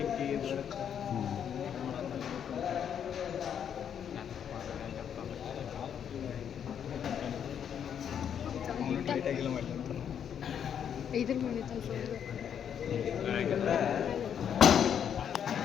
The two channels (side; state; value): right; quieter; 8.5 dB